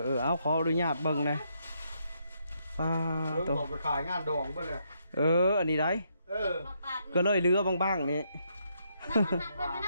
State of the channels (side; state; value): both; inverted; correlation -0.76